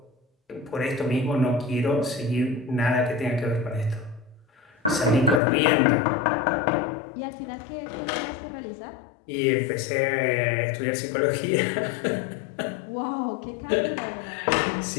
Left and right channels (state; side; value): drops out; right; at 5.4 s